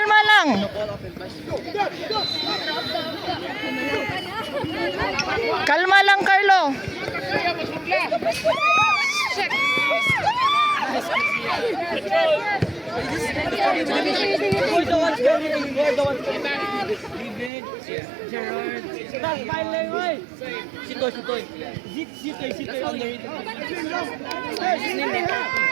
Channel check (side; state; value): left; drops out; at 17.5 s